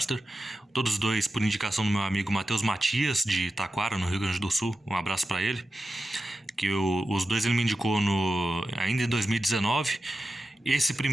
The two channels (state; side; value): normal; both; correlation 0.92